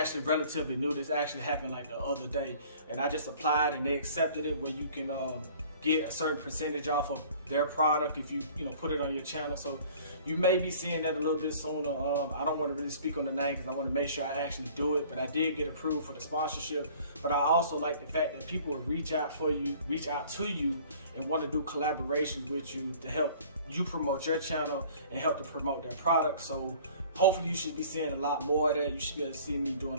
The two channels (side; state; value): both; inverted; correlation -0.50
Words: relatively new. This actually happened like the other day, and I just applied and they accepted it, where you can get a certain percentage off of their product if you put it on your channel. So you may be seeing that a little bit sooner. I don't want to really speak on the name because I want to make sure I actually do it, but I did get approved for the sponsorship. But I also like the fact that people will reach out to you and want to do collaborations with you to help you promote your channel and help to promote their product. So hopefully you should be seeing a lot more of that. You should be able to see me